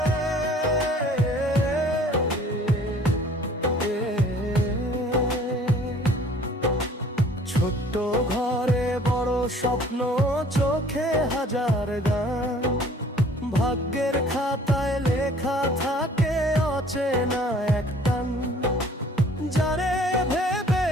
ছোট্ট ঘরে বড় স্বপ্ন, চোখে হাজার গান, ভাগ্যের খাতায় লেখা থাকে অচেনা এক টান। যারে ভেবে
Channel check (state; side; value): normal; both; correlation 0.53